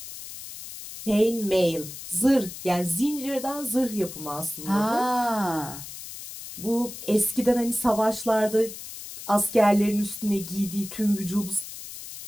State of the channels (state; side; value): noise; left; hiss, 12 dB below the sound